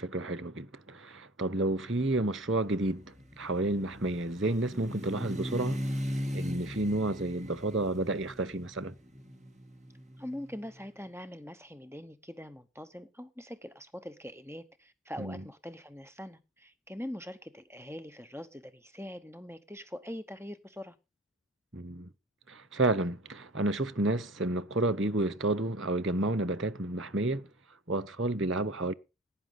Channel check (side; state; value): both; normal; correlation 0.44